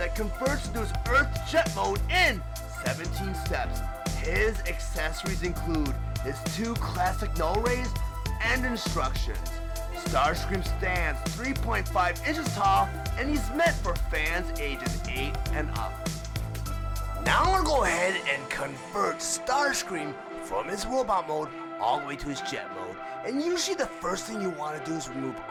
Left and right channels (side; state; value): both; identical; correlation 1.00